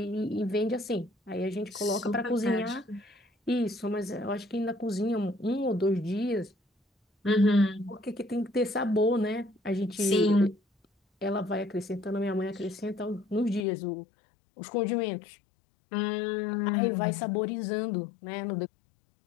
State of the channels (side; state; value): right; drops out; at 13.7 s